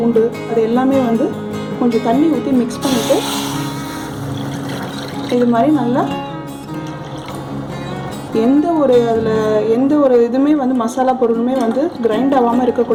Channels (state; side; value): identical; both; correlation 1.00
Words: அது எல்லாமே கொஞ்சம் தண்ணி ஊற்றி மிக்ஸ் பண்ணிவிட்டு இது மாதிரி நல்லா எந்த ஒரு இதுவுமே மசாலா பொருளுமே கிரைண்ட் ஆகாமல்